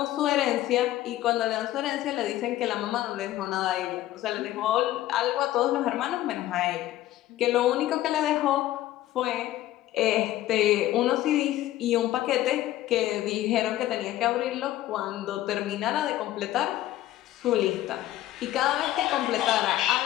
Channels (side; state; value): right; quieter; 14.4 dB